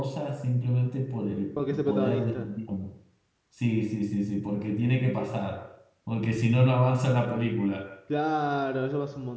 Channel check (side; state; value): both; identical; correlation 1.00